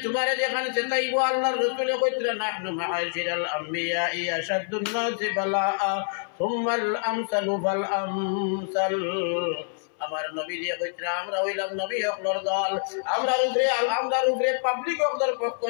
তোমারে যেখানে চেতাইব, আল্লাহর রাসূল কইতরা নাহনু মাআশিরাল আম্বিয়া আশাদুন নাসি বালাআ সুম্মাল আমসালু ফাল আমসাল। আমার নবী দিয়ে কইতরা আমরা হইলাম নবী হকলর দল, আমরার উপরে পাবলিক হকদের পক্ষ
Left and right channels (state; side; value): silent; right; 61 dB below the other